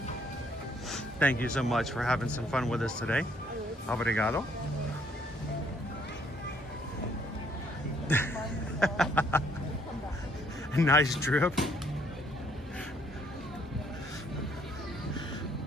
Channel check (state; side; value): normal; both; correlation 0.66